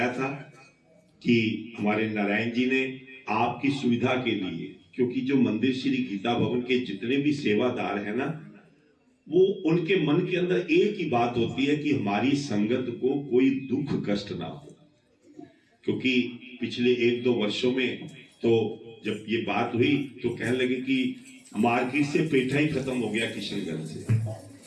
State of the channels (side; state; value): both; identical; correlation 1.00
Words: था कि हमारे नारायण जी ने आपकी सुविधा के लिए, क्योंकि जो मंदिर श्री गीता भवन के जितने भी सेवादार हैं ना, वो उनके मन के अंदर एक ही बात होती है कि हमारी संगत को कोई दुख कष्ट ना हो। क्योंकि पिछले 1-2 वर्षों में तो जब ये बात हुई तो कहने लगे कि मार्केट से पेठा ही खत्म हो गया किशनगंज से,